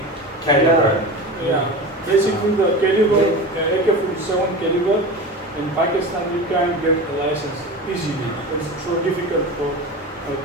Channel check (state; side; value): normal; both; correlation 0.29